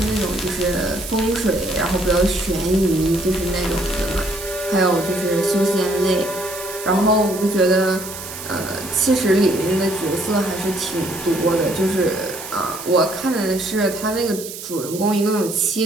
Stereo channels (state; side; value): noise; right; hiss, 11 dB below the sound